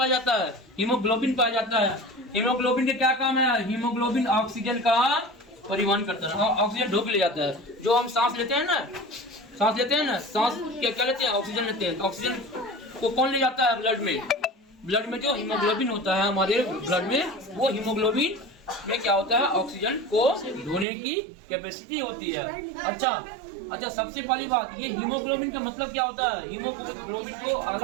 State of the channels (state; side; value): drops out; left; at 20.9 s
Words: जाता है, हीमोग्लोबिन पाया जाता है। हीमोग्लोबिन के क्या काम है, हीमोग्लोबिन ऑक्सीजन का परिवहन करता है, ऑक्सीजन ढोक ले जाता है। जो हम सांस लेते हैं ना, सांस लेते हैं ना, सांस क्या लेते हैं, ऑक्सीजन लेते हैं। ऑक्सीजन को कौन ले जाता है, ब्लड में। ब्लड में जो हीमोग्लोबिन होता है हमारे ब्लड में, वो हीमोग्लोबिन में क्या होता है, ऑक्सीजन को ढोने की कैपेसिटी होती है। अच्छा, सबसे पहली बात, ये हीमोग्लोबिन का मतलब क्या होता है। हीमोग्लोबिन को